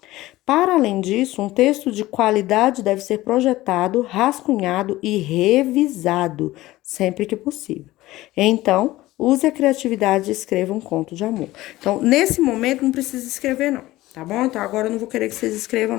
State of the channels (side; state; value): right; quieter; 17.3 dB